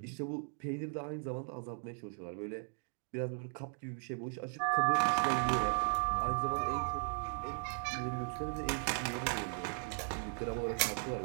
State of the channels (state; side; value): silent; left; 53 dB below the other